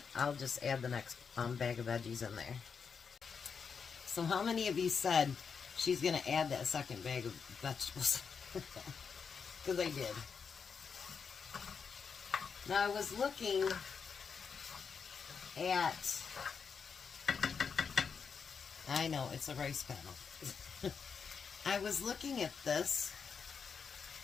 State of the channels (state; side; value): quieter; right; 6.1 dB